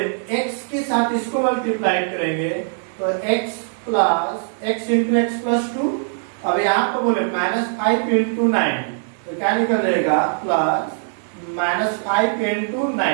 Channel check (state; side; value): silent; left; digital silence